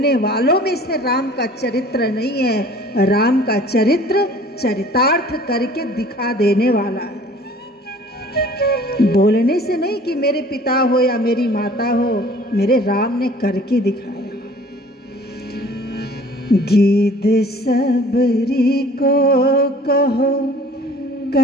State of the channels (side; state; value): both; normal; correlation 0.50